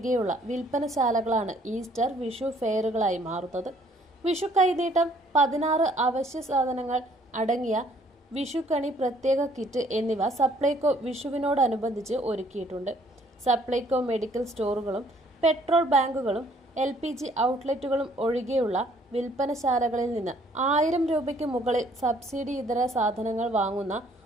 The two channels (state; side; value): normal; both; correlation 0.61